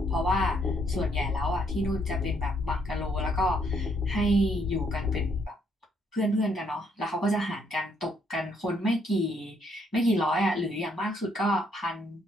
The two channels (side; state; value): both; normal; correlation 0.71